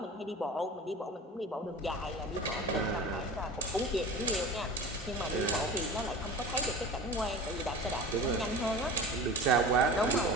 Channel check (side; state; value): both; normal; correlation 0.35